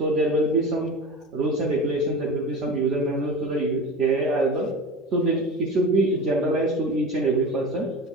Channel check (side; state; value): both; normal; correlation 0.31